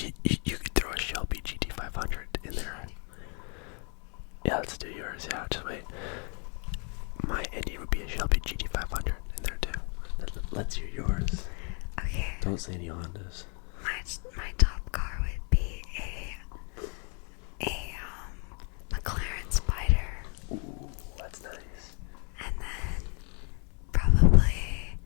could throw a Shelby GT500 in there. Yeah, let's do yours. Yeah, just wait. My ending would be a Shelby GT500 in there too. Let's hear yours. Okay. Don't say any Hondas. My top car would be a McLaren Spider. Ooh, that's nice. And then probably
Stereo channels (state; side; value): quieter; right; 37.6 dB